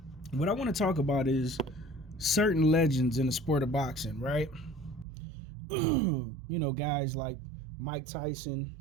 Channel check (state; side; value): drops out; left; at 5.1 s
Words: What I want to talk about is certain legends in the sport of boxing, right? Guys like Mike Tyson,